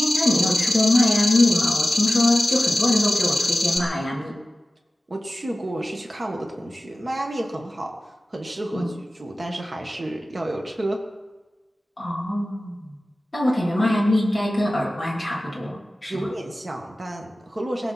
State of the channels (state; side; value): normal; both; correlation 0.96